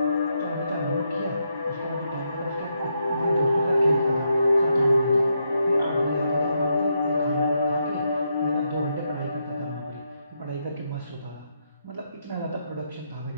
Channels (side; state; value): both; inverted; correlation -0.80